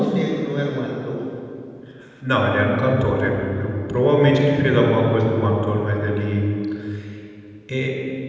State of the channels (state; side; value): identical; both; correlation 1.00